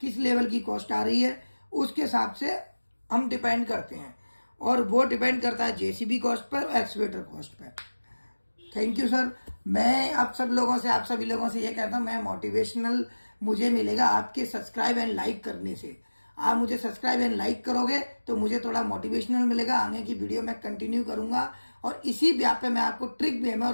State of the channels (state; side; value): inverted; both; correlation -1.00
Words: किस लेवल की कॉस्ट आ रही है, उसके हिसाब से हम डिपेंड करते हैं। और वो डिपेंड करता है जेसीबी कॉस्ट पर और excavator cost per. Thank you sir. मैं आप सभी लोगों से ये कहता हूं, मैं मोटिवेशनल मुझे मिलेगा आपके सब्सक्राइब एंड लाइक करने से। आप मुझे सब्सक्राइब एंड लाइक करोगे तो मुझे थोड़ा मोटिवेशनल मिलेगा, आगे की वीडियो मैं कंटिन्यू करूंगा और इसी ब्याह पे मैं आपको ट्रिक वे में